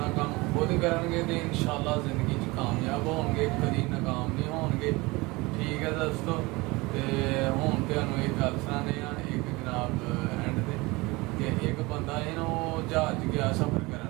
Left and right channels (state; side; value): quieter; left; 23.2 dB